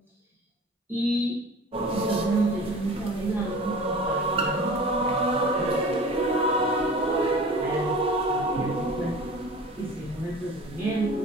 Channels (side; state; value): both; normal; correlation 0.40